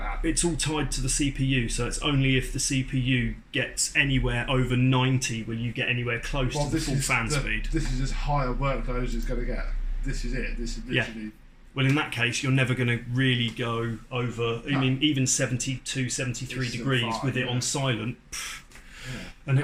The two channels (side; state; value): both; identical; correlation 1.00